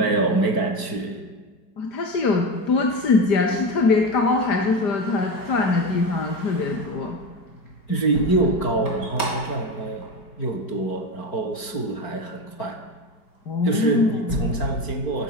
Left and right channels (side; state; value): right; late; 4.4 ms